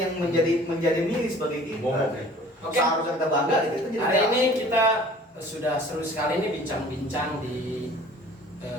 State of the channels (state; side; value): normal; both; correlation 0.48